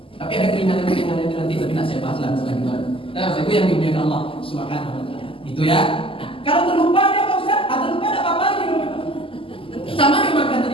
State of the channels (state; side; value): late; right; 0.26 ms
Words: Tapi ada keringanan-keringanan itu nanti, tapi tidak saya bahas lah selanjutnya. Nah, Bapak Ibu yang dimuliakan Allah Subhanahu wa taala. Itu ya. Kalau terlupa dia Pak Ustaz, atau lupa ada apa-apa lagi. Sama yang makan